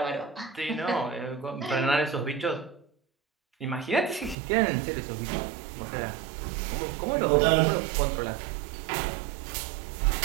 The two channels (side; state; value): left; drops out; at 4.4 s